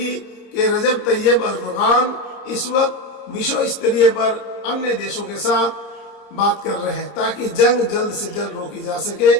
के रजब तैयब अर्दोगान इस वक्त विश्व स्तरीय पर अन्य देशों के साथ बात कर रहे हैं ताकि जंग जल्द से जल्द रोकी जा सके।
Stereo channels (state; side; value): late; right; 30 ms